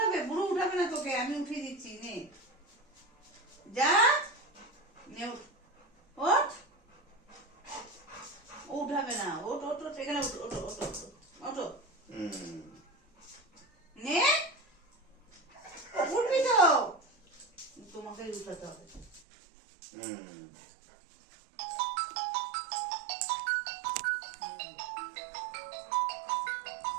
বুড়ো উঠাবে না তোকে, আমি উঠিয়ে দিচ্ছি, নে যা। নে ওঠ, ওঠ। ও উঠাবে না, ওঠ ওঠ ওঠ, এখানে ওঠ, ওঠো ওঠো ওঠো ওঠো। নে, উঠবি তো? তোমাকে উঠাতে হবে।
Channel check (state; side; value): drops out; left; at 19.2 s